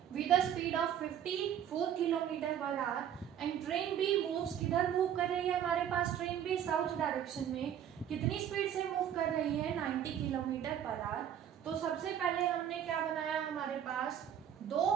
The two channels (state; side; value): quieter; left; 9.7 dB